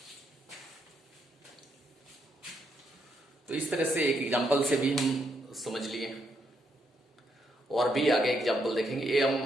तो इस तरह से एक एग्जांपल से भी हम समझ लिए, और भी आगे एग्जांपल देखेंगे। ये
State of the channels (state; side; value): normal; both; correlation 0.77